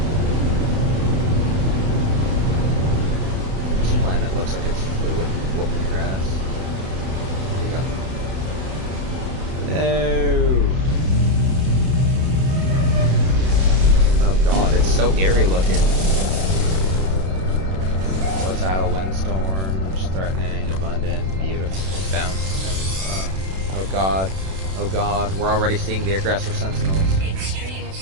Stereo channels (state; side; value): late; left; 32 ms